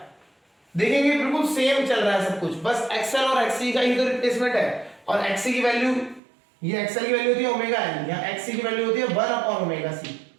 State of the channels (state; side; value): drops out; left; at 6.2 s